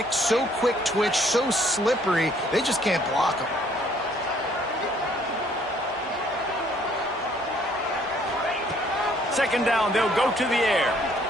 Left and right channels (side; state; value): both; normal; correlation 0.63